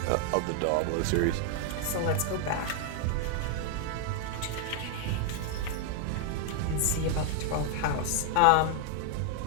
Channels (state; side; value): different; both; correlation 0.00